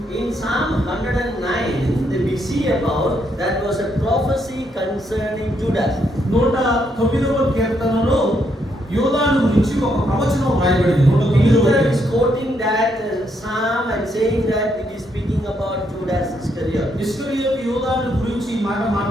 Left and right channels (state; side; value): normal; both; correlation 0.76